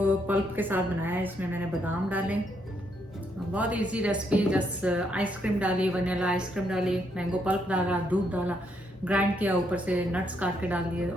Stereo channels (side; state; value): both; normal; correlation 0.75